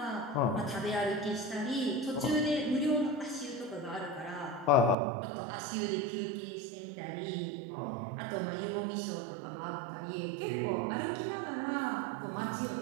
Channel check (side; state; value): left; drops out; at 5.0 s